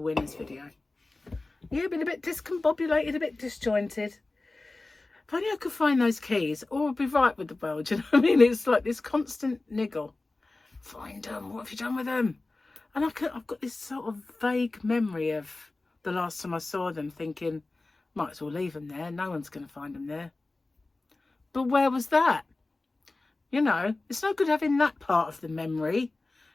video. Yeah, been a bit discombobulated, a bit disjointed. If only I could find those keys, or I'd be right with the world. Do you know what I mean? It's like this constant niggle. Find them. What have you done with them? And I've got this sort of vague memory of the last time I saw them, thinking, might as well leave them there. No one's going to find them there. But where was that? You know, it's no good having that part of the memory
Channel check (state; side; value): quieter; right; 3.2 dB